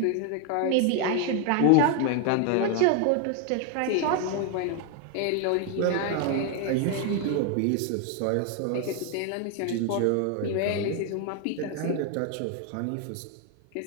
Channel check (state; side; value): different; both; correlation 0.01